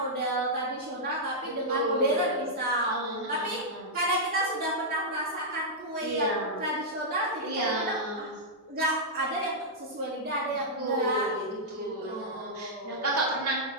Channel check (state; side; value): normal; both; correlation -0.08